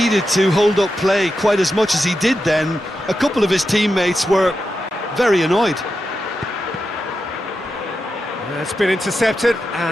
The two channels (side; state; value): both; normal; correlation 0.88